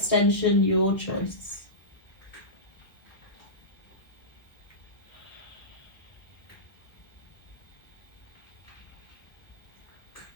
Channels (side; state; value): right; late; 1.5 ms